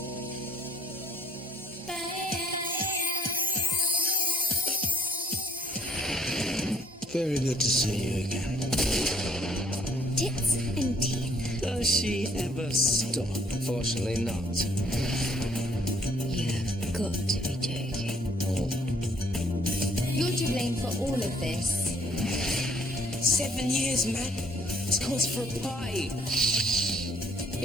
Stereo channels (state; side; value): normal; both; correlation 0.63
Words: Very good to see you again. Tits and teeth. Does she she ever stop? Unfortunately not. You've got to be joking. You're to blame for all of this. 7 years, man. It's cause for a pie.